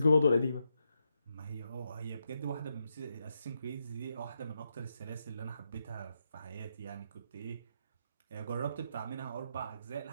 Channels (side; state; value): both; inverted; correlation -0.83